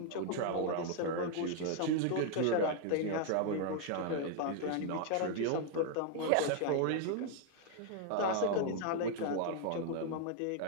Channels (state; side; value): different; both; correlation 0.00